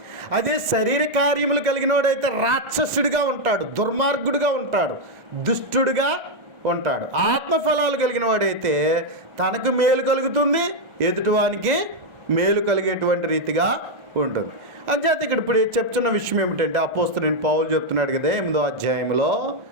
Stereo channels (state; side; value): late; left; 1.4 ms